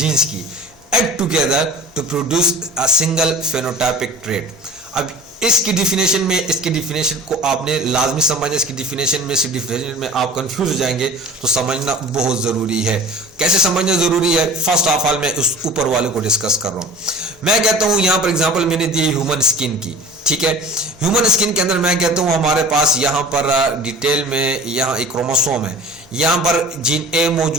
की, act together to produce a single phenotypic trait। अब इसकी डिफिनेशन में, इसकी डिफिनेशन को आपने लाजमी समझना। इसकी डिफिनेशन में, इस डिफिनेशन में आप कंफ्यूज हो जाएंगे, तो समझना बहुत जरूरी है। कैसे समझना जरूरी है? फर्स्ट ऑफ ऑल मैं उस ऊपर वाले को डिस्कस कर रहा हूं। मैं कहता हूं यहां पर एग्जांपल मैंने दी ह्यूमन स्किन की, ठीक है। ह्यूमन स्किन के अंदर मैं कहता हूं हमारे पास यहां पर डिटेल में यहां एक क्रोमोसोम है, यहां पर जीन A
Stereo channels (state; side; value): normal; both; correlation 0.40